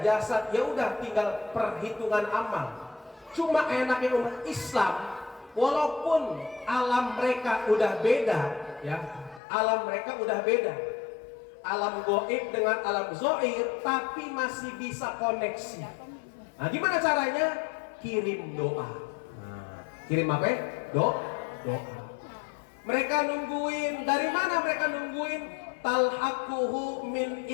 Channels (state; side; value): drops out; right; at 9.4 s